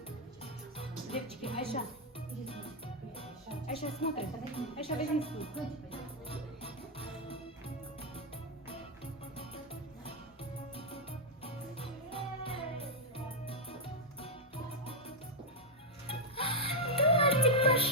Девочки, Айша. Айша, смотри. Айша, возьми стул.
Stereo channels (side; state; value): both; normal; correlation -0.01